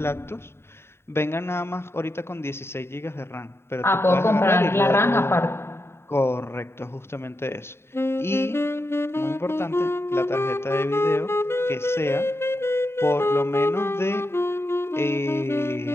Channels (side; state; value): right; late; 0.12 ms